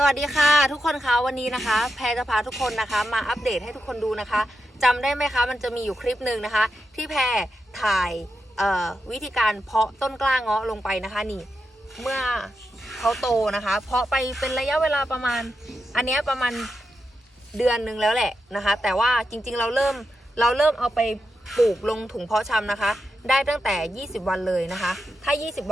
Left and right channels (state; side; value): normal; both; correlation 0.87